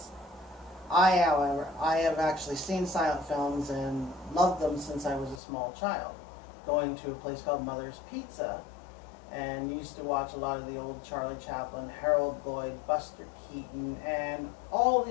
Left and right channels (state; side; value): drops out; right; at 5.4 s